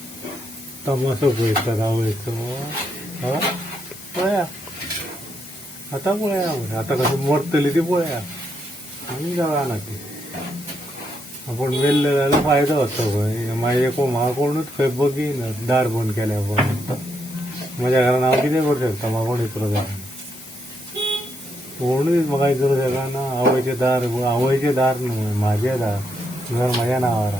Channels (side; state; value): left; noise; hiss, 16 dB below the sound